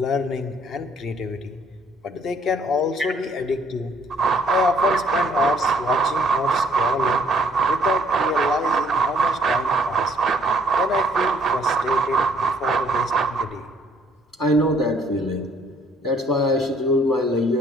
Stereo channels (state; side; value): normal; both; correlation 0.62